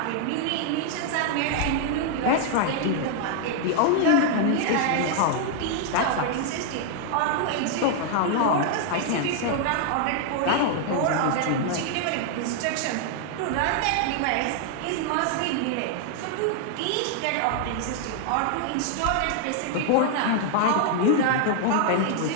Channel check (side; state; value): both; different; correlation 0.00